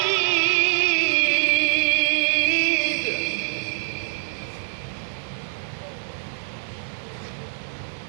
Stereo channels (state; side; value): silent; left; digital silence